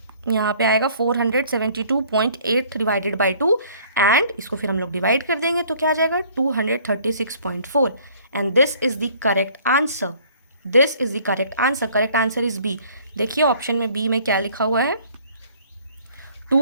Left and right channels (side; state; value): both; inverted; correlation -0.56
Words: यहाँ पे आएगा 472.8 डिवाइडेड बाय 2 एंड इसको फिर हम लोग डिवाइड कर देंगे तो क्या आ जाएगा 236.4 and this is the correct answer. This is the correct answer. Correct answer is B. देखिए ऑप्शन में B में क्या लिखा हुआ है,